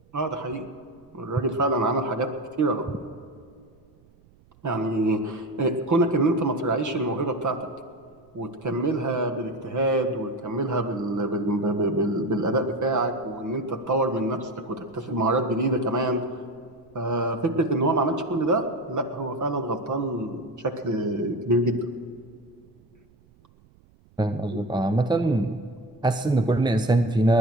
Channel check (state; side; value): noise; right; rumble, 30 dB below the sound